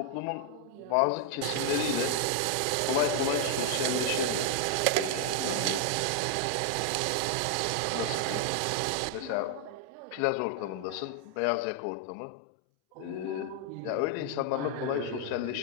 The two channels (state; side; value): different; both; correlation 0.00